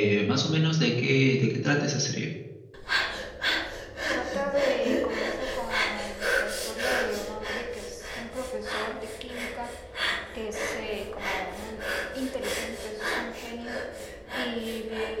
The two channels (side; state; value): both; identical; correlation 1.00